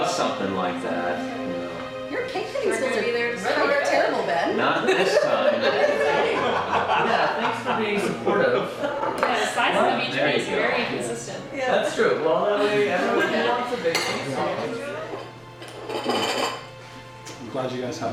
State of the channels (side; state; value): both; identical; correlation 1.00